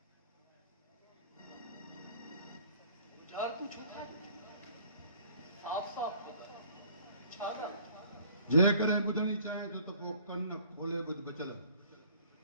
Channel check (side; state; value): both; inverted; correlation -0.54